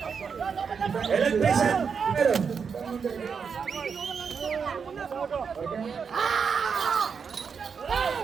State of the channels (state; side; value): quieter; left; 6.1 dB